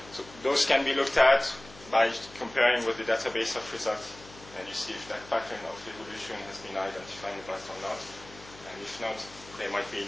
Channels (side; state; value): left; noise; hum, 20 dB below the sound